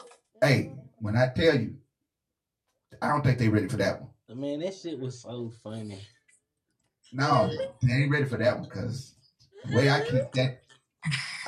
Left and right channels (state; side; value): identical; both; correlation 1.00